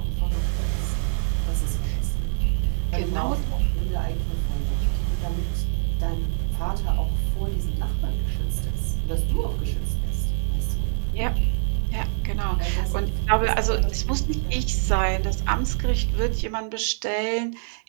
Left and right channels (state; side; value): silent; left; 62 dB below the other